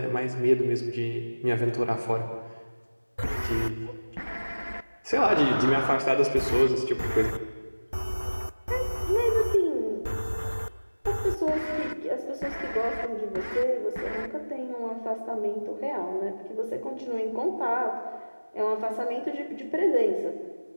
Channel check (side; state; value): both; inverted; correlation -1.00